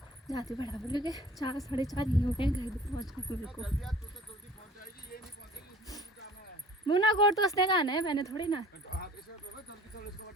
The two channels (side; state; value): both; normal; correlation 0.48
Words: जाती बराबर, क्योंकि 4 साढ़े 4 ही हो गए घर भी पहुँचने मेरे को। मुना कोट तो उसने कहना है, मैंने थोड़ी ना।